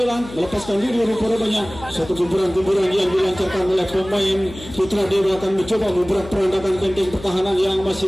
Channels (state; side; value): noise; left; hum, 15 dB below the sound